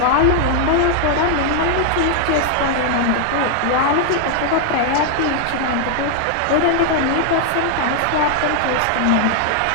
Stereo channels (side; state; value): both; different; correlation 0.00